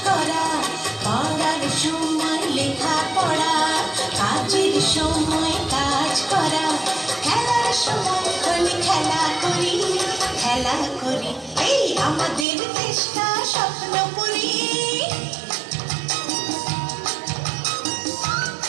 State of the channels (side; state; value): left; drops out; at 12.5 s